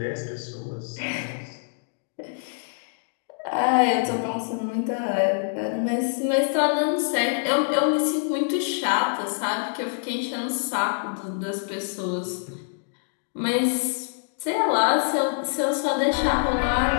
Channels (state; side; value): silent; right; digital silence